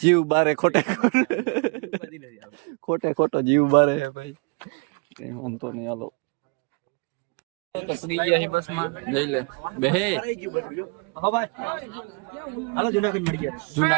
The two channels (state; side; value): quieter; left; 33.8 dB